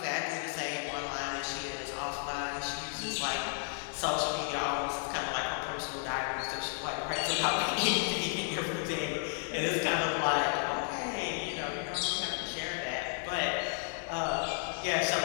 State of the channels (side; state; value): right; silent; 56 dB below the other